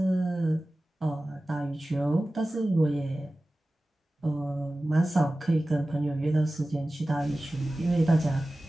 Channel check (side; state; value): both; normal; correlation 0.96